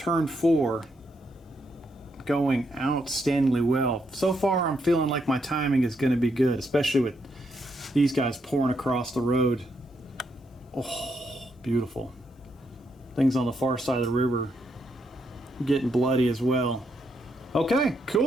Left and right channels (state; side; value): normal; both; correlation 0.78